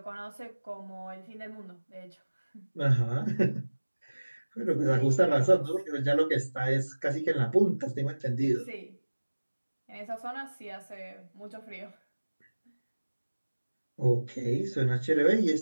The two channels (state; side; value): inverted; both; correlation -1.00